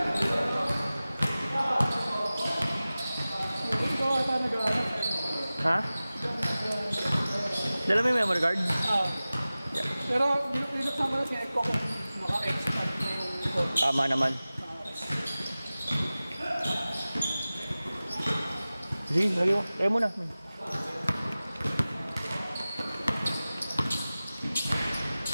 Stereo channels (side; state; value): both; inverted; correlation -0.97